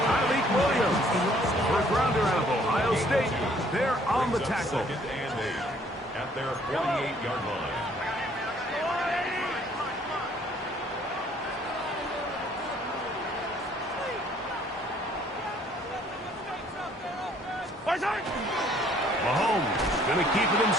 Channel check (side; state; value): both; normal; correlation 0.61